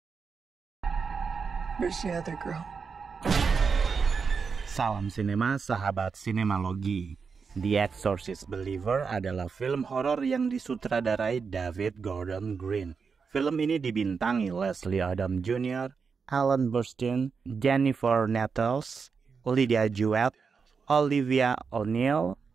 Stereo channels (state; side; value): quieter; left; 5.5 dB